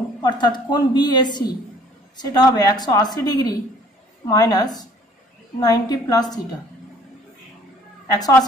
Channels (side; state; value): both; normal; correlation 0.56